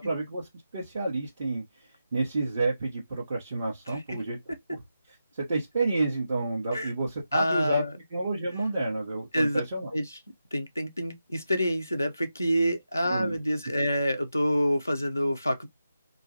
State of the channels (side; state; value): both; inverted; correlation -0.89